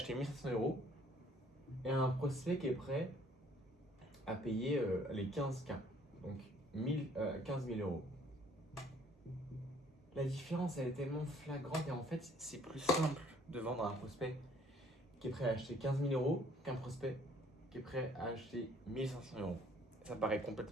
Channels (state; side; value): normal; both; correlation 0.60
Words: 1500 € et un prospect qui est prêt à payer les 15K. Donc 15 000 euros. La différence, elle est tellement flagrante et en fait, c'est plus simple de vendre à un prospect qui est prêt à acheter 15 000 euros qu'un prospect qui est prêt à acheter 1500 euros. Ça paraît